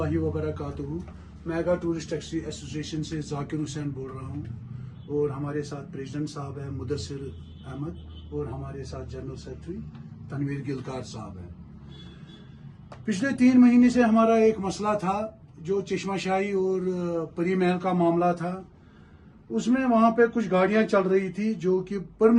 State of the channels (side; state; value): both; identical; correlation 1.00